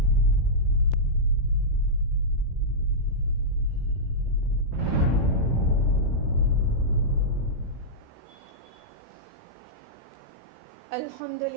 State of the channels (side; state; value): left; late; 16 ms